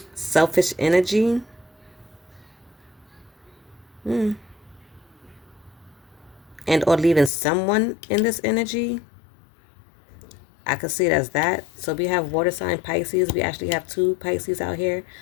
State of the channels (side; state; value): right; drops out; at 7.3 s